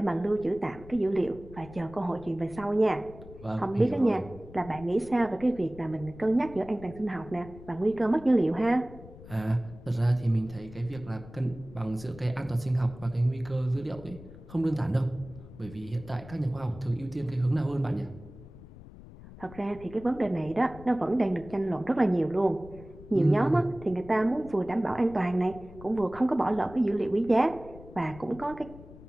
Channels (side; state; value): left; noise; rumble, 17 dB below the sound